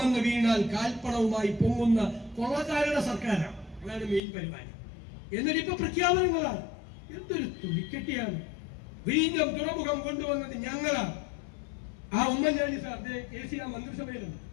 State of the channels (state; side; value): drops out; right; at 4.2 s